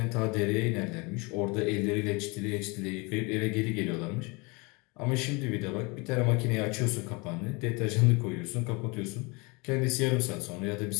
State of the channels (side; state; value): right; quieter; 28.1 dB